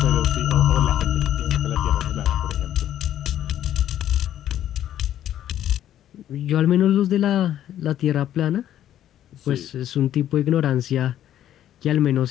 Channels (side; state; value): right; quieter; 11.5 dB